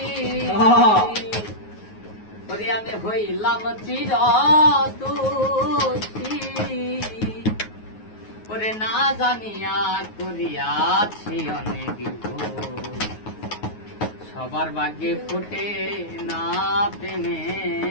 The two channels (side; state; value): right; late; 9.4 ms